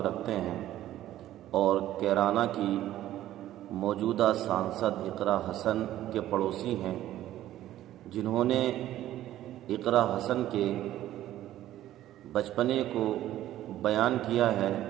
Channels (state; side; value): quieter; left; 13.4 dB